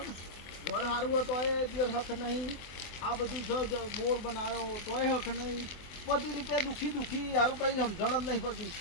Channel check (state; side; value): late; right; 23 ms